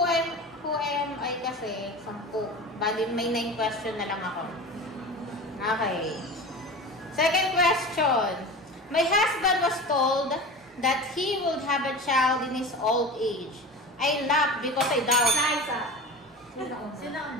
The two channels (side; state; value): both; normal; correlation 0.32